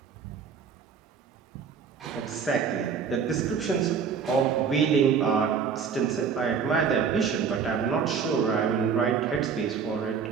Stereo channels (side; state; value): left; quieter; 6.4 dB